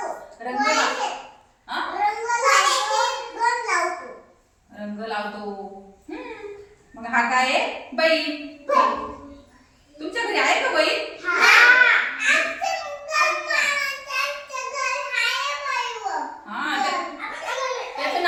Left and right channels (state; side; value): identical; both; correlation 1.00